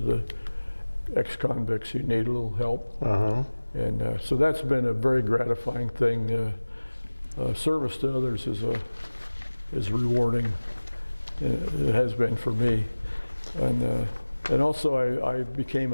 ex-convicts who need a little help. And so that's been a very gratifying thing. Service to others is rewarding. It has been for me, and also I became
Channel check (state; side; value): inverted; both; correlation -1.00